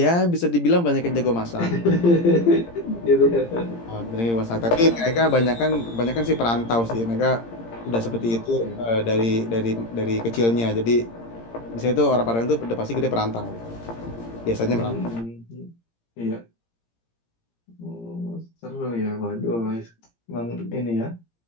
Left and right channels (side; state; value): right; late; 17 ms